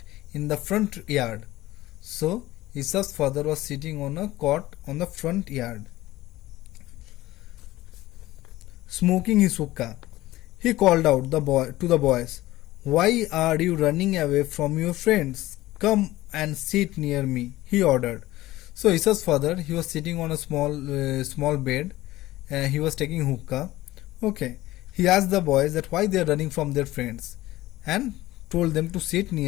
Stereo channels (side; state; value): right; quieter; 17.0 dB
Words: in the front yard. So Ishav's father was sitting on a cot on the front yard, smoking his hookah. He called out to the boys, "Why are you running away from your friends? Come and sit near me," he ordered. So Ishav's father, he was sitting on a small bed. He was taking hookah. Okay. He asked the boys that why they are running from their friends and told them to sit